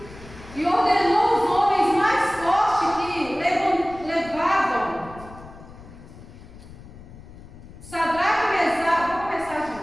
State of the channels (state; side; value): noise; left; rumble, 18 dB below the sound